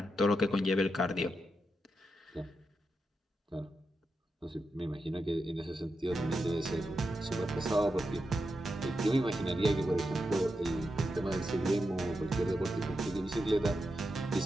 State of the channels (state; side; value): normal; both; correlation 0.87